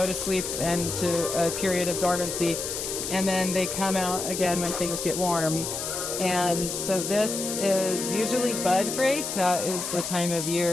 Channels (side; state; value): left; noise; hiss, 4 dB below the sound